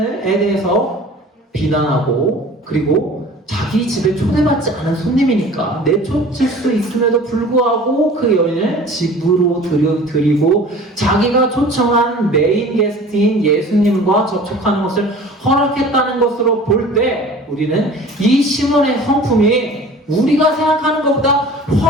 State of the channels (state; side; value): normal; both; correlation 0.44